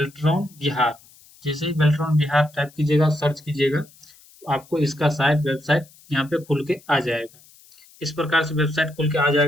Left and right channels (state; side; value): noise; left; hiss, 26 dB below the sound